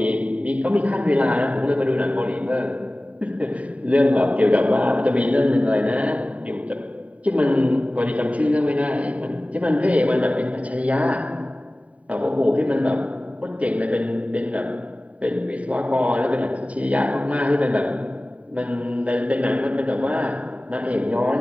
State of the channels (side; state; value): left; late; 0.067 ms